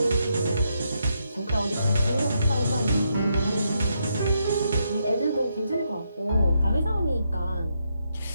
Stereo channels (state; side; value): inverted; both; correlation -0.80